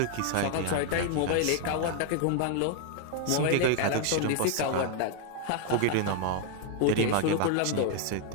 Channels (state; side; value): different; both; correlation 0.01